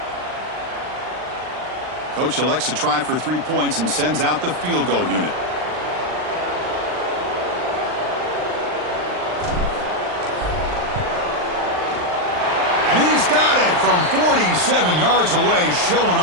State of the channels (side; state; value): left; late; 39 ms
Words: Coach elects to try for 3 points and sends out the field goal unit. And he's got it from 47 yards away, showing